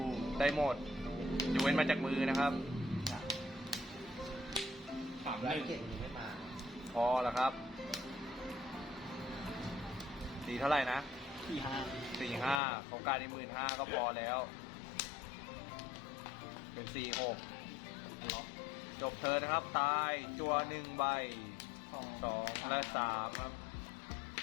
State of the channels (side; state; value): right; drops out; at 12.6 s